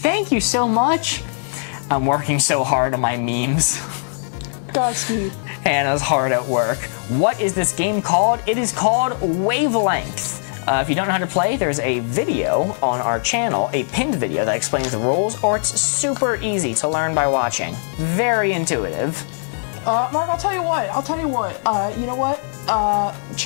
you so much. I'm working so hard on my memes. Godspeed. Hannah's hard at work. What is this game called? It is called Wavelength. If you don't know how to play, there's a video on our channel, a pinned video that explains the rules, or it's super easy to learn by watching. Very intuitive. Mark, I'll tell you what. You know what?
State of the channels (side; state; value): right; silent; digital silence